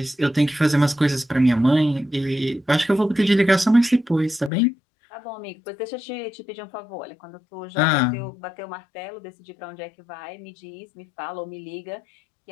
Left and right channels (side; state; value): right; drops out; at 4.5 s